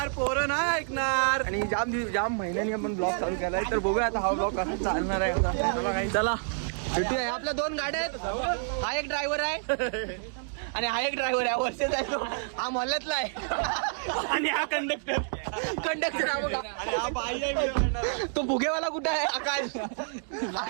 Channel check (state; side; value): silent; left; digital silence